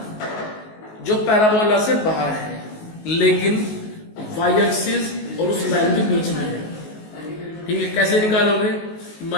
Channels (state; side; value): late; right; 19 ms